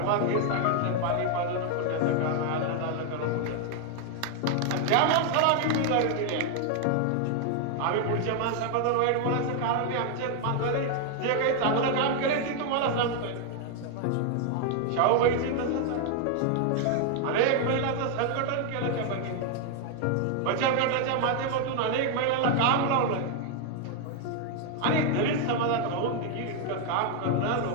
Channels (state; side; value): different; both; correlation 0.00